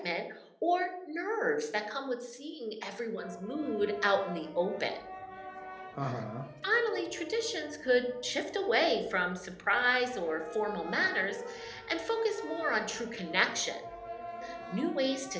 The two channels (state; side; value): identical; both; correlation 1.00